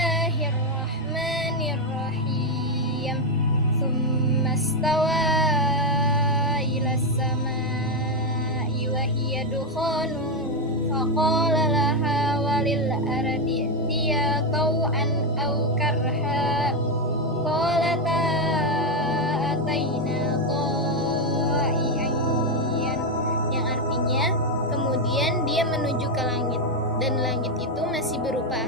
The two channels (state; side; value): normal; both; correlation 0.06